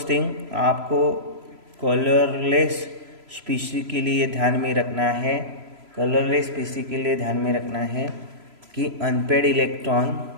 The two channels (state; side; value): late; left; 3.0 ms